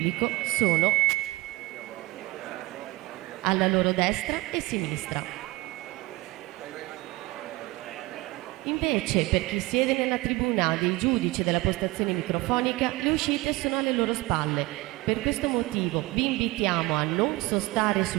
sono alla loro destra e sinistra. Invece, per chi siede nella tribuna dei giudici della postazione microfonica, le uscite sono alle loro spalle. Per questo motivo vi invitiamo a non sostare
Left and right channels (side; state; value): left; quieter; 21.3 dB